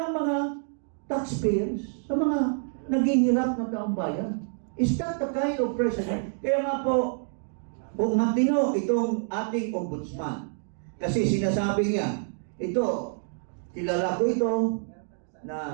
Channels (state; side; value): silent; left; digital silence